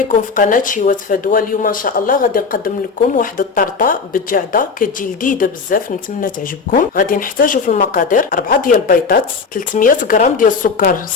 في قناه شيوات فدوى. اليوم ان شاء الله غادي نقدم لكم واحد الطرطه بالجعده كتجي لذيذه بزاف، نتمنى تعجبكم. غادي نحتاجوا في المقادير 4 ديال البيضات، 300 غرام ديال السكر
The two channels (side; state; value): right; quieter; 5.0 dB